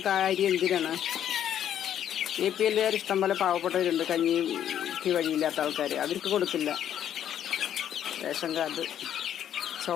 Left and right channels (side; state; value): right; quieter; 10.2 dB